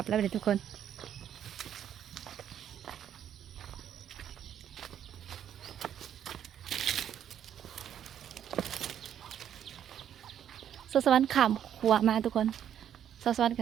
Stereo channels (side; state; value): left; quieter; 9.8 dB